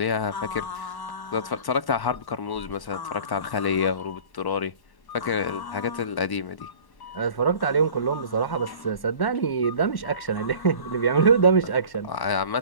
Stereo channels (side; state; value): right; late; 1.1 ms